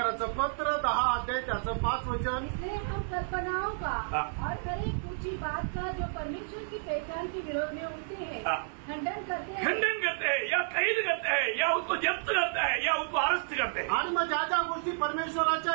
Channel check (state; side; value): silent; left; 57 dB below the other